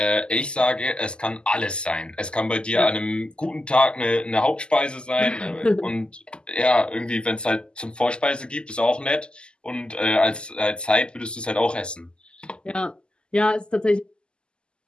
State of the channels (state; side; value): late; right; 0.049 ms